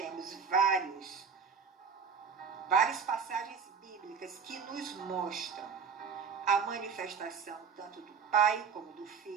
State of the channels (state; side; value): quieter; left; 6.1 dB